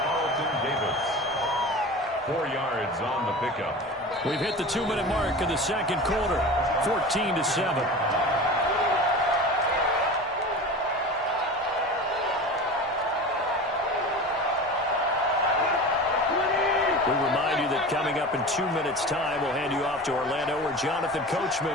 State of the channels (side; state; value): both; normal; correlation 0.33